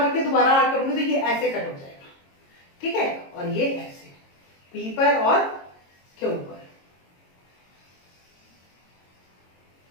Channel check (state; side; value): late; right; 22 ms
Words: रख के दोबारा आग करूंगी तो ये ऐसे कट हो जाएगा, ठीक है, और ये ऐसे P पर और Q पर।